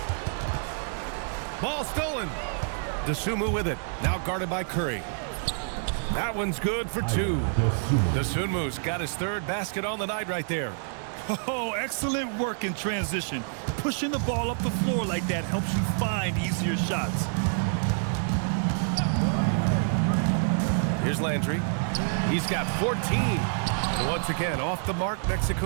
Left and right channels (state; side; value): silent; left; digital silence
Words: Ball stolen. Dosunmu with it. Now guarded by Curry. That one's good for 2. Dosunmu's got his 3rd basket on the night right there. Oh, excellent work in transition. Pushing the ball up the floor like that helps you find easier shots. Here's Landry. He's got 14. And once again, off the mark,